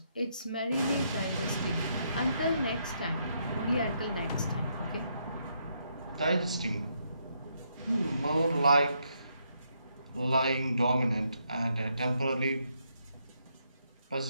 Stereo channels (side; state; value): both; inverted; correlation -0.76